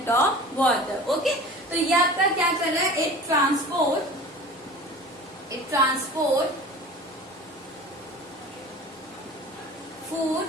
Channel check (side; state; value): both; normal; correlation 0.39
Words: of water. Okay, तो ये आपका क्या कर रहा है, it transport food